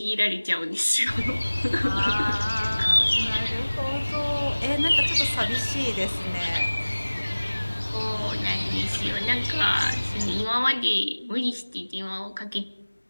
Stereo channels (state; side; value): inverted; both; correlation -1.00